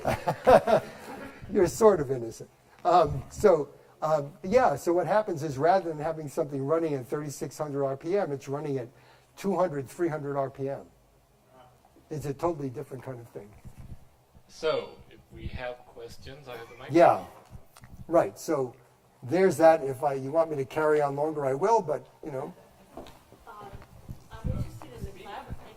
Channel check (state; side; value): identical; both; correlation 1.00